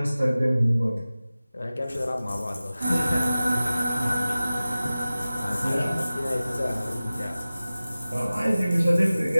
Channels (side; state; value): both; inverted; correlation -0.97